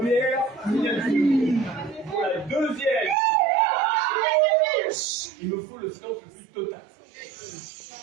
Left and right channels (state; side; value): drops out; left; at 3.2 s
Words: signature. Pour la deuxième, il me faut le silence le plus total.